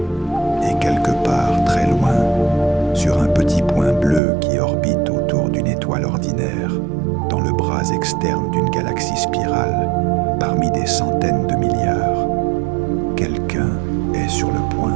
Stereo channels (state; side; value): drops out; left; at 4.2 s